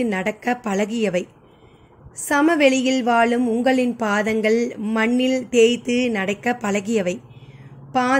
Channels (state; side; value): identical; both; correlation 1.00